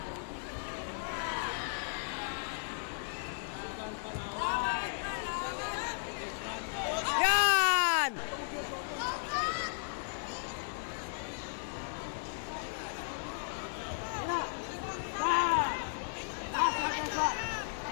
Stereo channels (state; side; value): silent; right; digital silence